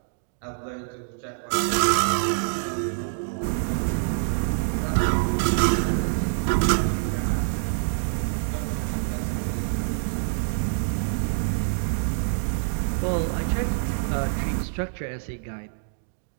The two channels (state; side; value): silent; left; digital silence